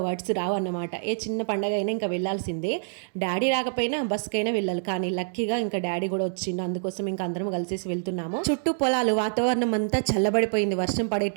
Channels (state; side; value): silent; left; digital silence